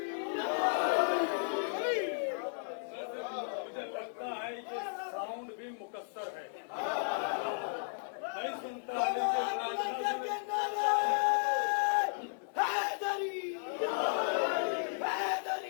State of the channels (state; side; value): silent; right; digital silence